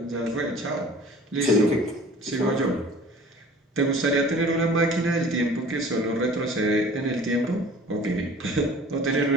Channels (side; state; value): both; normal; correlation 0.46